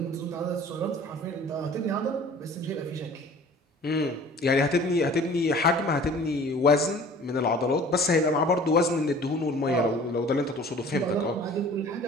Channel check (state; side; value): normal; both; correlation 0.46